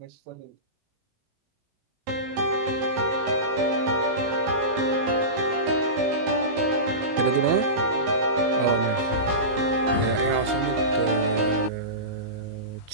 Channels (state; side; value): late; left; 19 ms